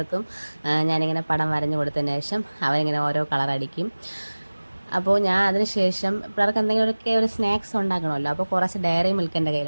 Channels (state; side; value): inverted; both; correlation -1.00